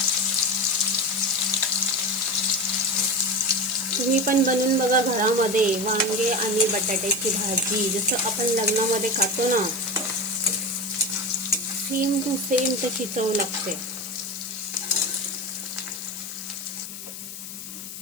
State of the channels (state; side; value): noise; left; hiss, 11 dB below the sound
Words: तुम्ही पण बनवून बघा घरामध्ये वांगे आणि बटाट्याची भाजी, जसं आपण लग्नामध्ये खातो ना, सेम टू सेम तशी चव लागते.